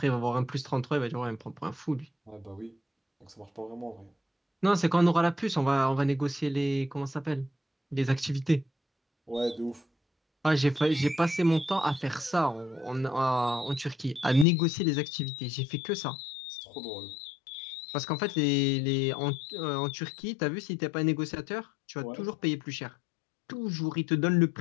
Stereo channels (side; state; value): right; drops out; at 14.5 s